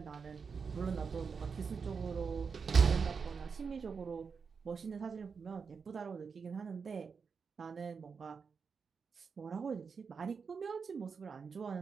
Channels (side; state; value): left; quieter; 5.6 dB